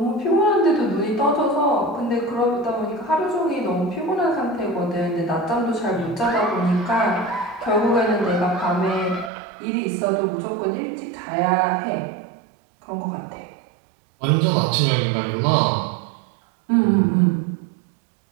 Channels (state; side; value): drops out; left; at 9.3 s